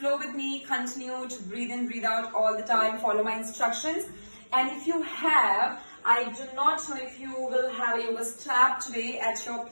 with me, continue to breathe in, breathe out all the time, follow my instructions. And if you have, I do not know if you will have a yoga strap today at your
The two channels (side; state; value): both; inverted; correlation -1.00